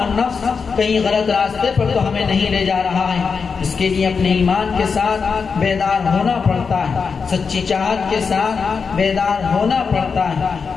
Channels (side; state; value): right; quieter; 5.4 dB